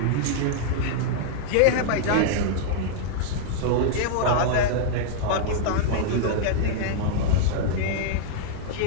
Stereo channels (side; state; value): both; different; correlation -0.01